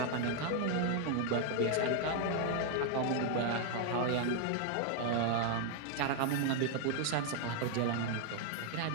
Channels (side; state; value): both; different; correlation 0.00